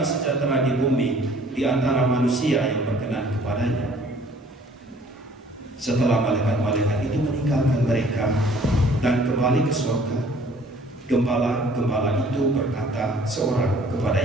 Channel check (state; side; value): normal; both; correlation 0.55